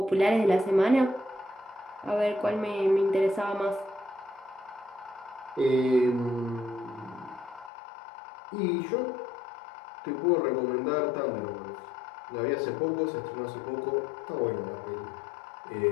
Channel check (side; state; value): right; drops out; at 7.7 s